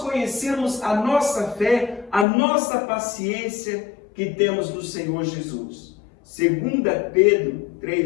a nossa fé, a nossa paciência que temos no Senhor Jesus. 2 Pedro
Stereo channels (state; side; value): drops out; right; at 2.2 s